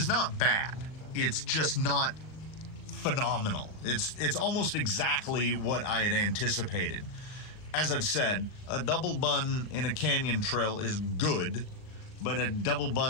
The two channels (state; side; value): late; right; 39 ms